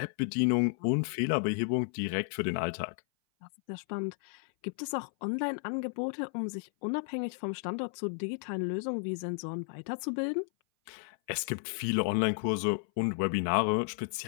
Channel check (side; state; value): right; silent; 56 dB below the other